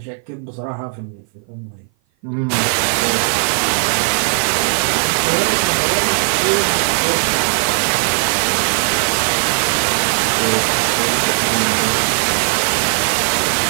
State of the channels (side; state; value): left; silent; 56 dB below the other